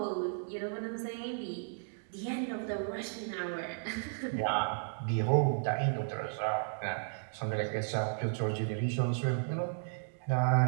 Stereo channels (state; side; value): silent; left; digital silence